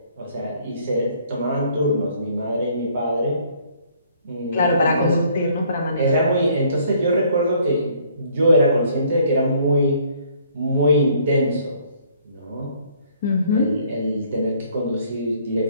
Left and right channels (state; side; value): inverted; both; correlation -0.62